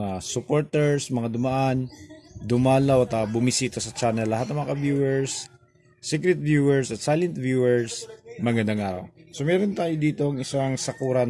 supporters, mga dumaan, dumalaw at bumisita sa channel, lahat ng mga viewers, secret viewers at silent viewers, magandang araw. So meron tayo dito ang isang Sakura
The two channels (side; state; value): both; identical; correlation 1.00